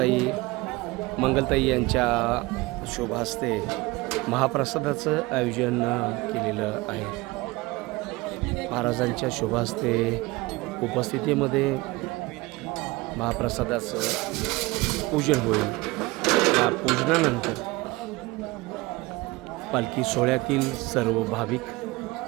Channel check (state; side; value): quieter; left; 22.2 dB